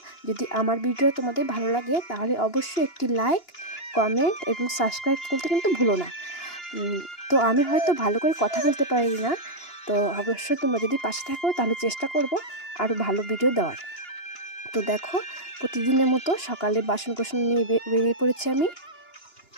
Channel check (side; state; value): right; late; 2.9 ms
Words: যদি আমার ভিডিও তোমাদের ভালো লাগে তাহলে অবশ্যই একটি লাইক, কমেন্ট এবং সাবস্ক্রাইব করতে কিন্তু ভুলো না। তো আমি হয়তো ভালো করে কথা বলতে পারি না, তো অবশ্যই তোমরা যদি পাশে থাকো তাহলে চেষ্টা করব আরও ভালো ভিডিও দেওয়ার। তো দেখো, প্রতিদিনের মতো সকালে বাসন কোসন নিয়ে বেরিয়ে পড়েছি আমি।